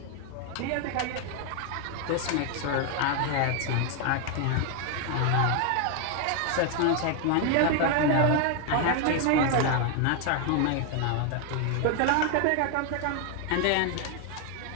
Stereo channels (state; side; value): different; both; correlation 0.01